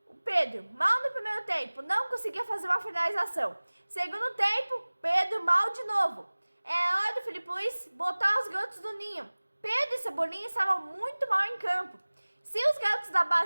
o Pedro mal no primeiro tempo, não conseguia fazer uma finalização. Segundo tempo, Pedro mal de novo. É hora do Felipe Luiz botar os garotos do ninho. Pedro e Cebolinha estavam muito mal em campo. Se os garotos da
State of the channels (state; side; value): inverted; both; correlation -1.00